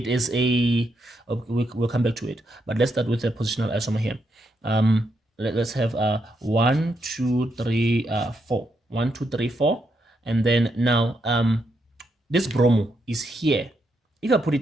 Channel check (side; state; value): both; normal; correlation 0.80